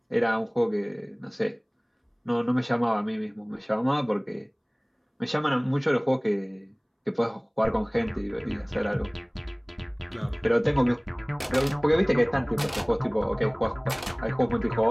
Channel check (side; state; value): both; identical; correlation 1.00